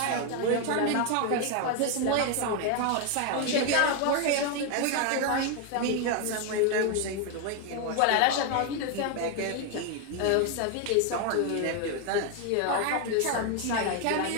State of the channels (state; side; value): different; both; correlation 0.01